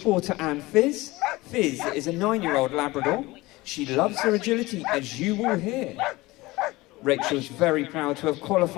Porter and Fizz. Fizz is a 9-year-old Labrador She loves her agility, as you will hear. Rachel's very proud to have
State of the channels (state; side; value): quieter; right; 20.5 dB